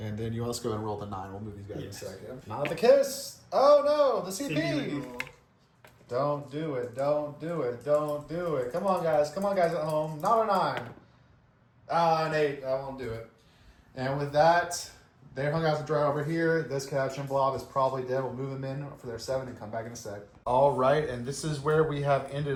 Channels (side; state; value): both; identical; correlation 1.00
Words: then you let's go and roll the 9. We'll move these guys in a second. Not the kiss. Oh no, the CP. Don't do it. Don't do it. Don't do it. Come on, guys. Come on, guys at home. Not a 9. An 8. I won't do it. And with that, they're hung out to dry over here. This Catachan blob is probably dead. We'll move them in for their 7 and come back in a sec. All right, and this is where we have